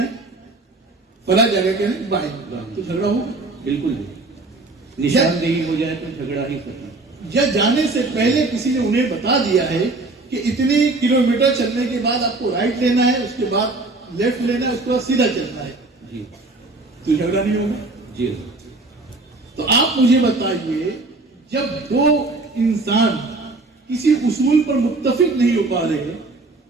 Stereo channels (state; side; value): quieter; left; 3.2 dB